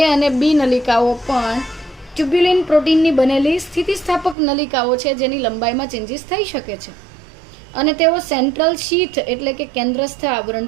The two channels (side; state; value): left; drops out; at 4.4 s